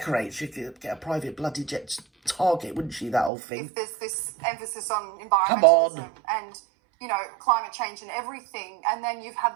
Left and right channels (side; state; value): left; drops out; at 3.3 s